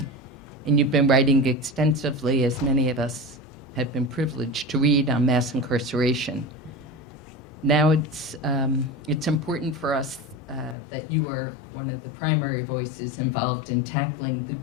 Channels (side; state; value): right; drops out; at 10.8 s